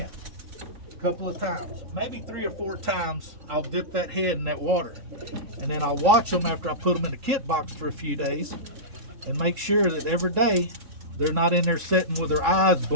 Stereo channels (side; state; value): left; late; 3.8 ms